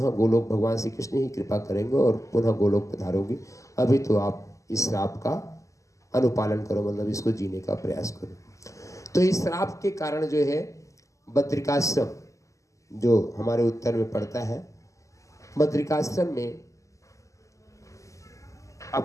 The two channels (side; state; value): right; late; 0.16 ms